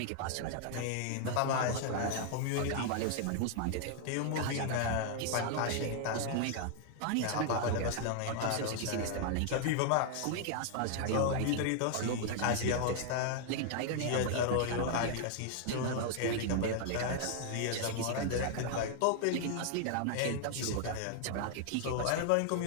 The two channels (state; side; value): different; both; correlation 0.00